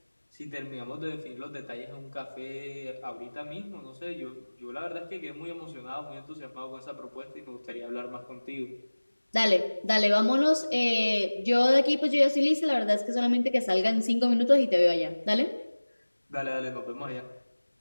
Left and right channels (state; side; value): inverted; both; correlation -1.00